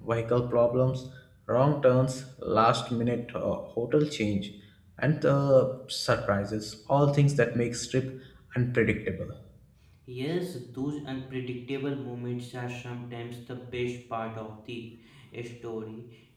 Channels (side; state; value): both; identical; correlation 1.00